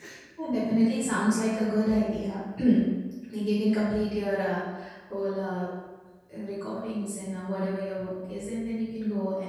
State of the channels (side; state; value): both; identical; correlation 1.00